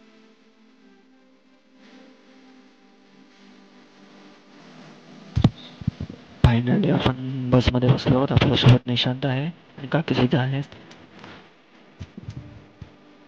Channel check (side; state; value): both; identical; correlation 1.00